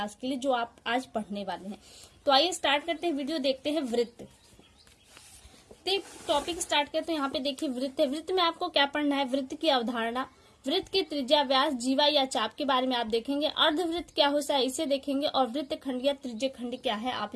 के लिए जो आप आज पढ़ने वाले हैं। तो आइए स्टार्ट करते हैं वीडियो, देखते हैं वृत्त। टॉपिक स्टार्ट करते हैं। यहाँ पे देखिए वृत्त है। वृत्त में आपको क्या पढ़ना है? वृत्त की अवधारणा, वृत्त की त्रिज्या, व्यास, जीवा या चाप के बारे में आप देखेंगे। अर्धवृत्त क्या होता है इसे देखेंगे, और वृत्त खंड या त्रिज्य खंड क्या है आप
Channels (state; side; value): identical; both; correlation 1.00